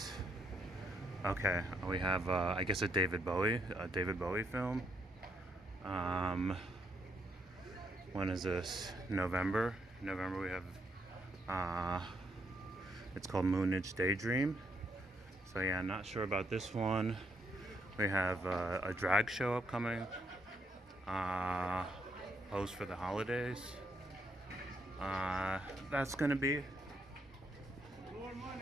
Okay, we have I guess a David Bowie film. When is this? November. We have it's called Moonage Daydream. So yeah, not sure about this one. We have a drag show upcoming. Post for the holidays. That's gonna be.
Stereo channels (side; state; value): both; normal; correlation 0.75